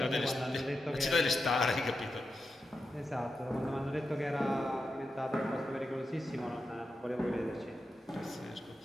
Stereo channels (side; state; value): both; normal; correlation 0.88